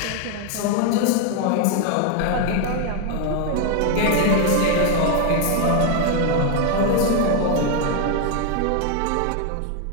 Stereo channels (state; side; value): different; both; correlation 0.01